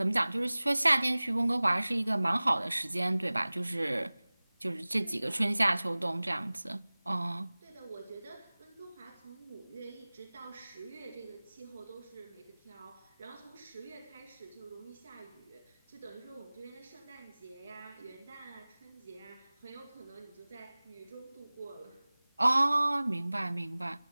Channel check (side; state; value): both; inverted; correlation -0.99